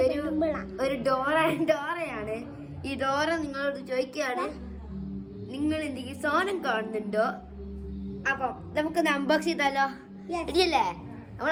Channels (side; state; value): both; identical; correlation 1.00